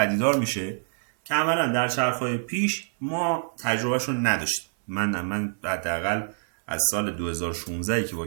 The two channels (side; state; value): left; silent; 59 dB below the other